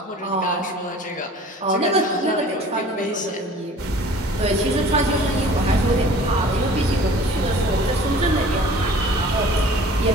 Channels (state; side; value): normal; both; correlation 0.47